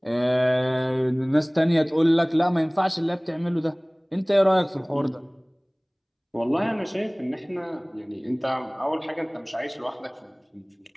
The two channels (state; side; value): identical; both; correlation 1.00